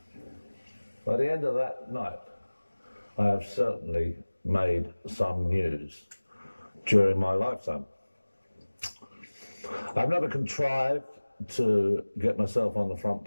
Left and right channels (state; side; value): inverted; both; correlation -1.00